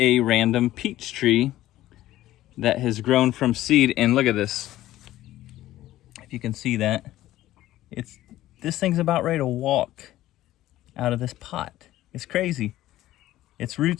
random peach tree that has grown from seed. And look at this. If you can see that, this thing's about ready to walk out of this pot. It's crazy. Its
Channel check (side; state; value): right; quieter; 14.8 dB